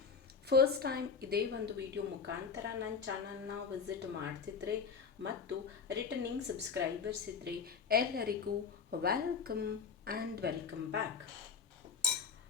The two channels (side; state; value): right; quieter; 5.7 dB